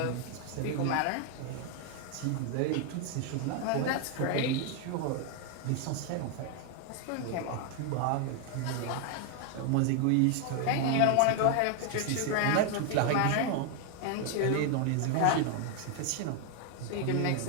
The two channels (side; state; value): both; different; correlation 0.01